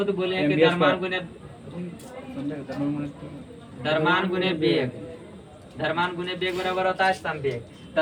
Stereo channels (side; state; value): both; identical; correlation 1.00